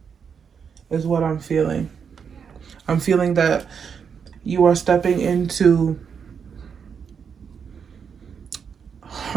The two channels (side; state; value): left; quieter; 6.7 dB